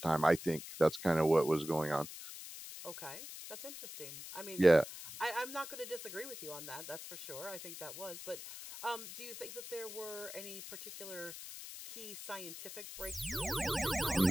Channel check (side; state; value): left; noise; hiss, 11 dB below the sound